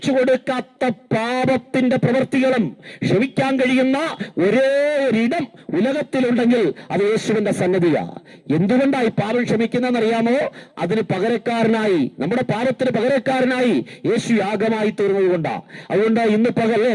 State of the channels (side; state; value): both; identical; correlation 1.00